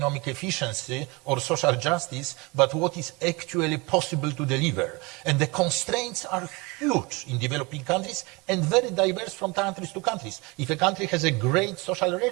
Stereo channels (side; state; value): left; quieter; 26.2 dB